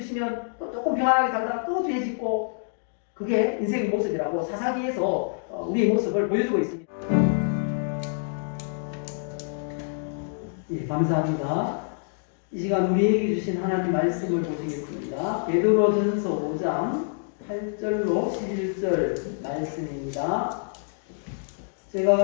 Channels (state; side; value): silent; right; digital silence